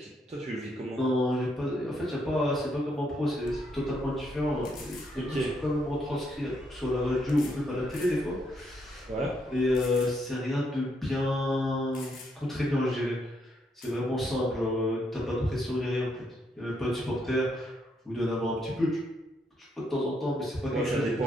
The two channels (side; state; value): both; normal; correlation 0.75